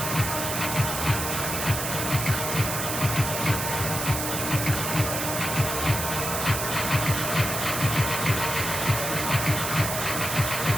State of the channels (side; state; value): right; noise; hiss, 3 dB below the sound